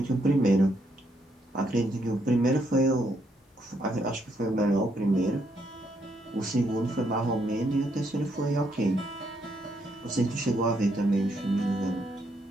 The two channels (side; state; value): both; normal; correlation 0.75